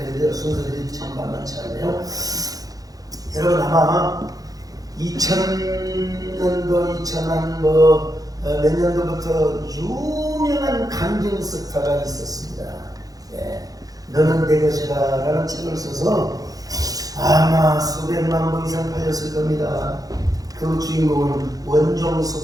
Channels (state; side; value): late; left; 0.18 ms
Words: 순서들이 참 만만치 않네요. 여러분 아마 2000년도 2000한 몇 년도부터 유명한 간증 스타가 있었습니다. 너는 내 것이다 라는 책을 써서 아마 수백만 부 이상 팔렸을 겁니다. 그 주인공은 원종수